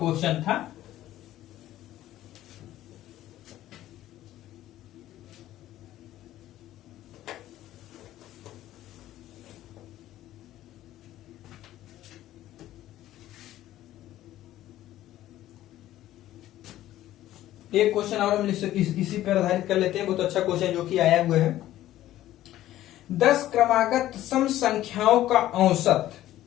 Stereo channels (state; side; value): quieter; right; 14.0 dB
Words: था। एक क्वेश्चन और हम इसी पर आधारित कर लेते हैं, बहुत अच्छा क्वेश्चन जो कि आया हुआ है। 10 क्रमागत सम संख्याओं का औसत